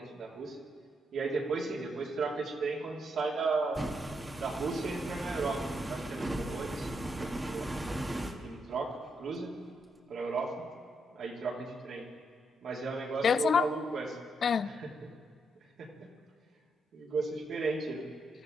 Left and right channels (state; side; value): normal; both; correlation 0.79